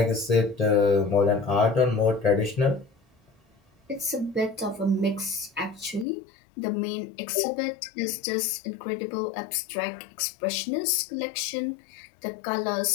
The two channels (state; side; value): drops out; right; at 6.1 s